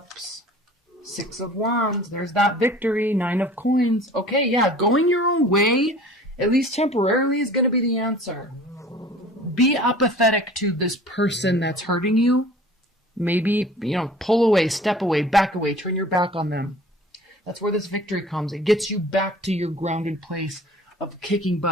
6 of Wands. There's that victory. 9 of Coins. Okay, yeah, going your own way, at least temporarily, is going to be the answer. Be apathetic to this person that's hurting you. Maybe, pull away, step away, back away, turn your back on them. That's where this victory comes. It gets you back to your grounded place of kicking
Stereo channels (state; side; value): normal; both; correlation 0.46